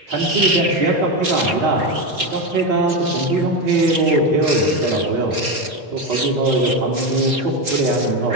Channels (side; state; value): left; late; 4.3 ms